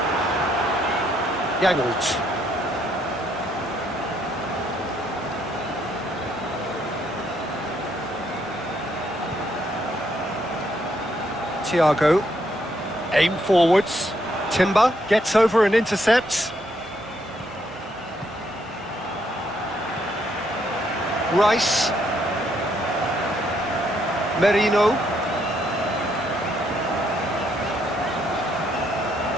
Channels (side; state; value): left; noise; hum, 26 dB below the sound